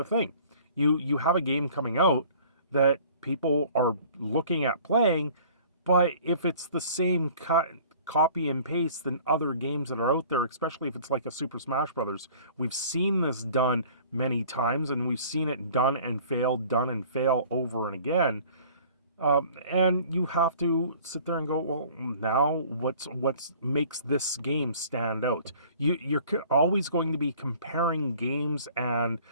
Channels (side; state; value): both; inverted; correlation -0.50